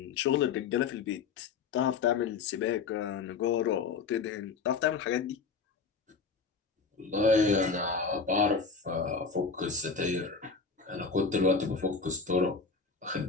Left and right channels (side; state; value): right; quieter; 5.1 dB